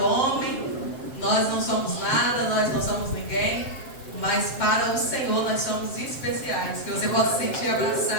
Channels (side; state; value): right; late; 7.5 ms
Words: homem nós não somos nada, nós não somos ninguém, mas para o Senhor nós somos especiais. Que você possa se sentir